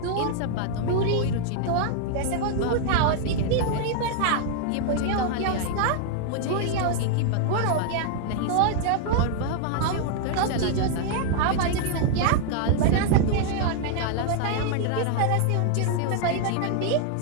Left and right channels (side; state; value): both; different; correlation 0.00